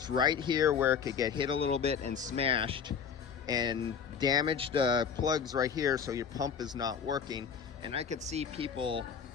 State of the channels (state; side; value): quieter; right; 6.8 dB